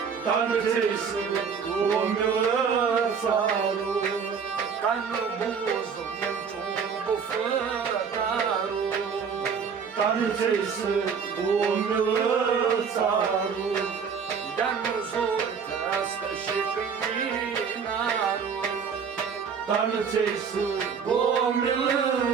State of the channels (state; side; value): quieter; left; 6.4 dB